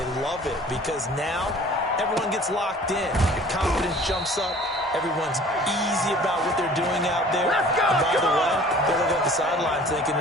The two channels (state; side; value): normal; both; correlation 0.49